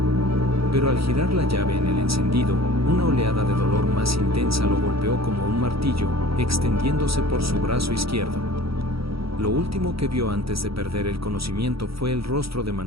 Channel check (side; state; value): left; late; 0.76 ms